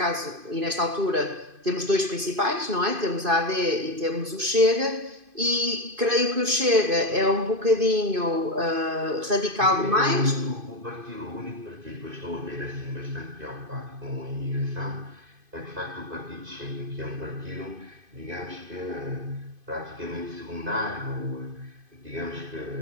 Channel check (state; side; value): late; left; 2.5 ms